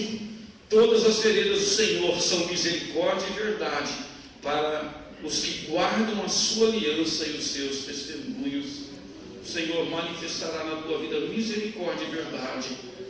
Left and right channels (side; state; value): both; identical; correlation 1.00